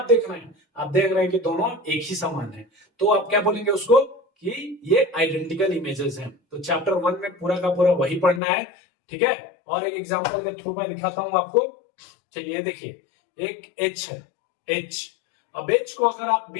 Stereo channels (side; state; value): right; drops out; at 8.4 s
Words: देख रहे हैं? आप देख रहे हैं कि दोनों एक ही समान है। तो आप क्या बोलेंगे उसको कि ये आइडेंटिकल इमेजेस हैं। तो चैप्टर 1 में पूरा का पूरा वही पढ़ना है। ठीक है। और एक एग्जांपल के थ्रू मैं दिखाता हूं आपको। चलिए देखिए, एक एच है, एच। अब एच को अगर आप